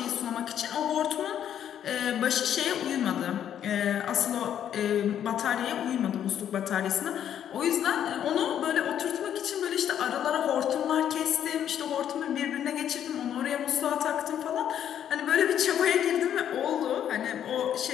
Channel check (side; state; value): right; quieter; 9.8 dB